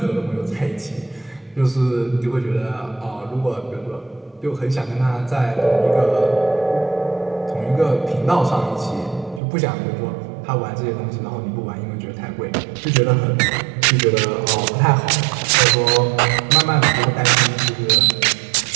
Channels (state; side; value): drops out; left; at 9.4 s